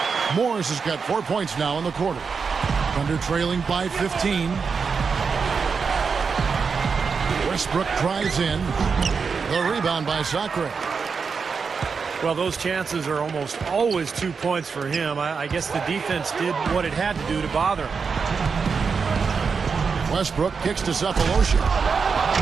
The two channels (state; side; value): quieter; left; 5.5 dB